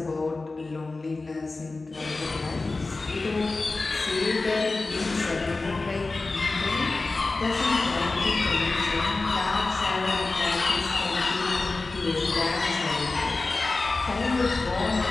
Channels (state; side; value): quieter; right; 3.5 dB